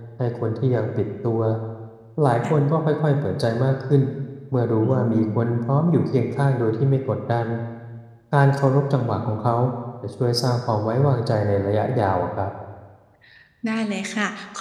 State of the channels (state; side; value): identical; both; correlation 1.00